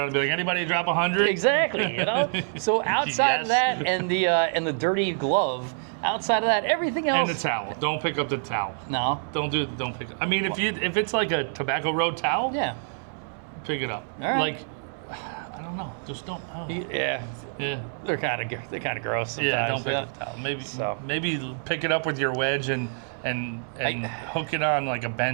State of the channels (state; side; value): silent; left; digital silence